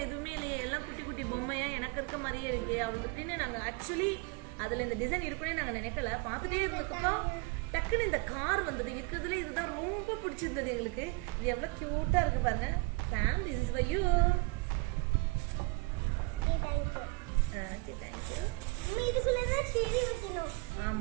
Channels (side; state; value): left; quieter; 28.1 dB